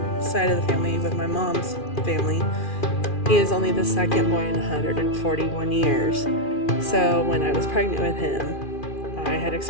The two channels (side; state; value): right; late; 2.4 ms